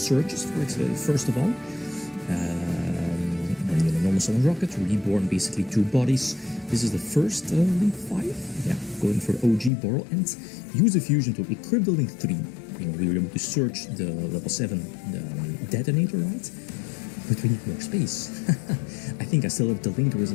for it, first of all. Normal summon rocket, reborn basically 2 bodies. This is the first Link 5. Going for OG Boral, and use the fusion to equip the Link 3. We were able to search the level 7 detonator, right? But we need more space. I think I still have the Linkerers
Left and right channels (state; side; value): drops out; right; at 9.7 s